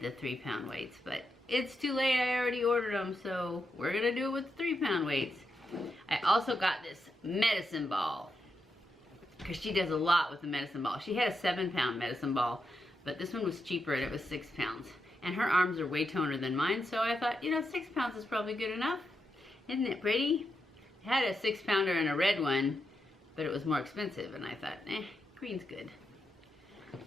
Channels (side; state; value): both; normal; correlation 0.85